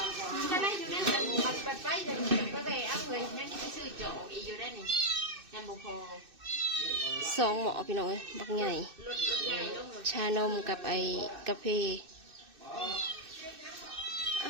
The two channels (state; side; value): late; left; 2.6 ms